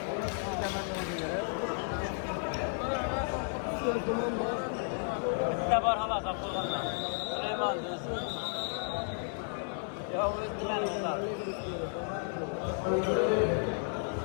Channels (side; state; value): right; silent; 56 dB below the other